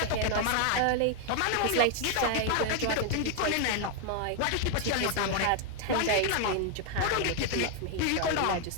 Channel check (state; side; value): different; both; correlation 0.00